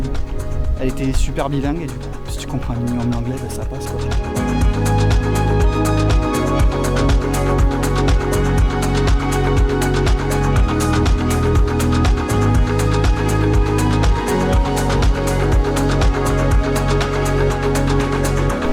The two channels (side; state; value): both; identical; correlation 1.00